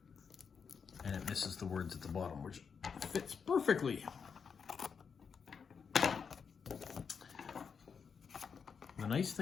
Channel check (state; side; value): quieter; right; 6.2 dB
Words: And it misses the words at the bottom, which fits perfectly. The nice